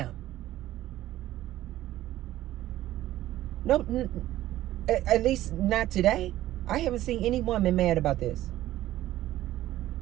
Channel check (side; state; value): left; quieter; 14.4 dB